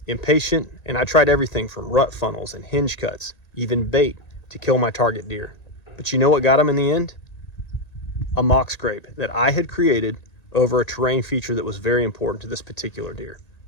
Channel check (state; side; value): late; right; 1.9 ms